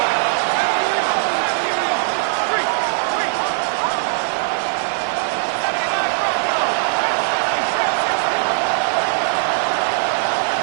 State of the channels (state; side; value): silent; left; digital silence